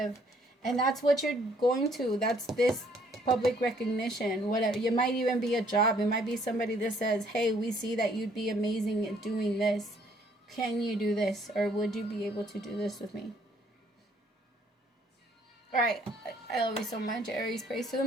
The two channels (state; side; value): normal; both; correlation 0.64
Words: And that's what you're going to. That's this public recognition. Whatever. It might even be a job. It might be somebody that says, hey, we see that you'd be amazing at doing this. Can you do this? Or would you be able to do this with me? All right. I love you so much, Aries. Praise to the